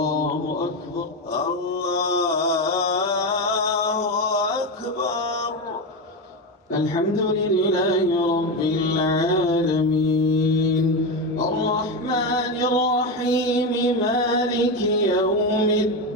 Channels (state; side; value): normal; both; correlation 0.14